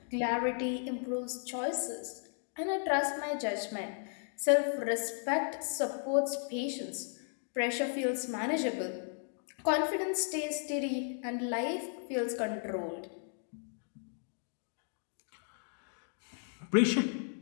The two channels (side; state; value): right; silent; 54 dB below the other